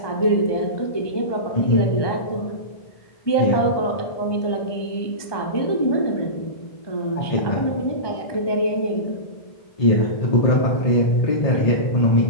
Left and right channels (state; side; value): late; right; 1.2 ms